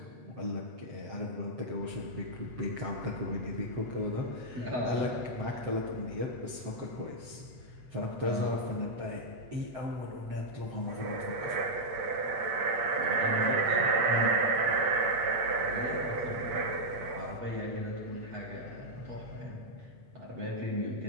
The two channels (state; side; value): late; left; 7.8 ms